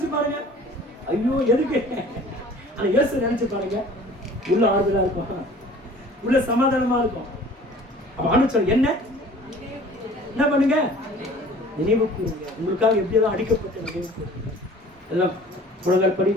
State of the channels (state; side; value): normal; both; correlation 0.48